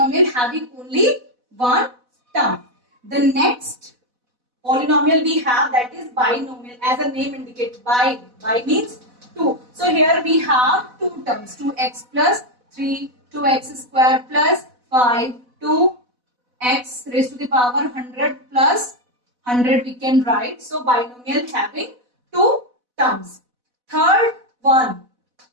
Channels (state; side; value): late; left; 4.0 ms